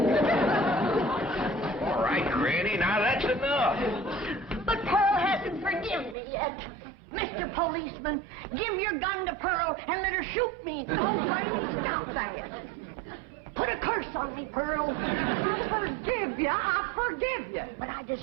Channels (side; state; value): left; drops out; at 6.2 s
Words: All right, Granny, now that's enough. But Pearl hasn't forgiven me yet. Mr. Policeman, give your gun to Pearl and let her shoot me. Oh, Granny, stop that. Put a curse on me, Pearl. I forgive you. But I